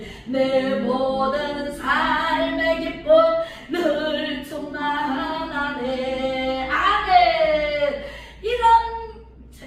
내 모든 삶의 기쁨 늘 충만하네. 아멘.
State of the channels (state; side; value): identical; both; correlation 1.00